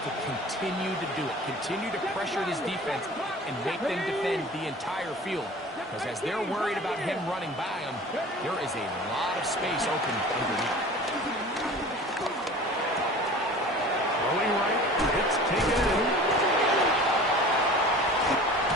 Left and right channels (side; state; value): both; normal; correlation 0.41